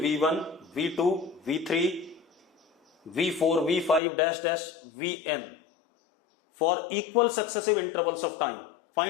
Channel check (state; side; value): drops out; right; at 4.0 s